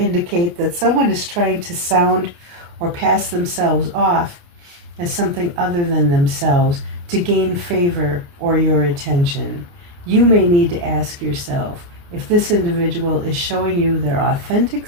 that someone is trying to sound or pass themselves off as something other than themselves to gain favor or your attention. You may need to ask yourself if this individual is showing you their authentic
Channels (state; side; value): late; left; 29 ms